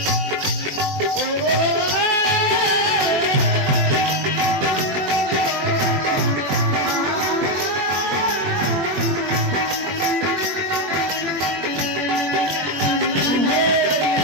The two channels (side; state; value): left; late; 21 ms